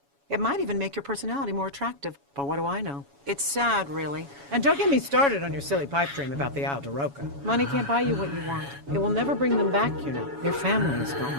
It might even make your personality more attractive, but what do I know? It's sad, really. And don't get me started on your silly pipe dream about the Isle de Roca. Money can't buy you what you want. It will never bring them back, you know. Your family is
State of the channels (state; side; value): late; left; 7.1 ms